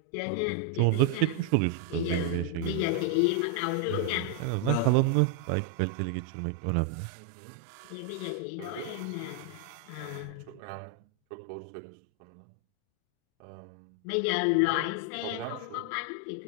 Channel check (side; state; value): both; different; correlation 0.00